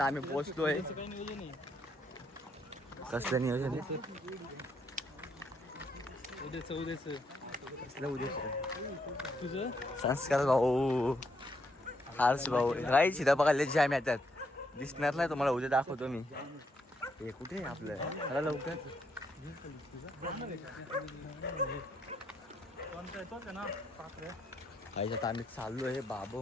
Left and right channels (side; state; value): both; normal; correlation 0.75